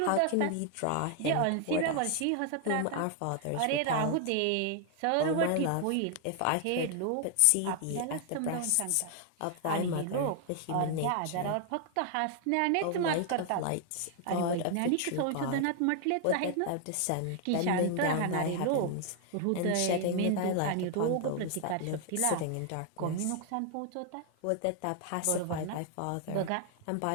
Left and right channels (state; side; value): different; both; correlation 0.00